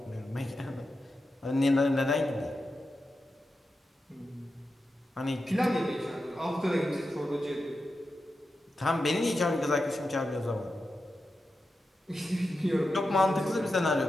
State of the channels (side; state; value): both; normal; correlation 0.90